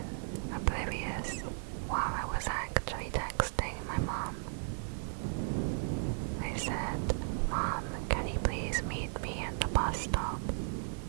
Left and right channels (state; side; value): silent; left; digital silence